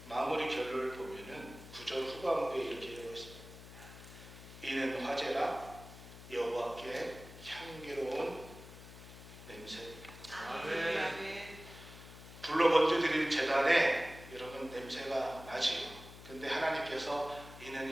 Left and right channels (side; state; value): left; noise; hum, 16 dB below the sound